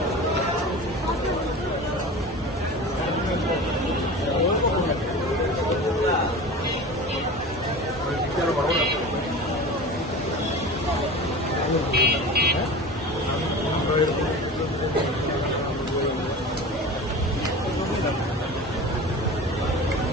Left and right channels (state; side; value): normal; both; correlation 0.33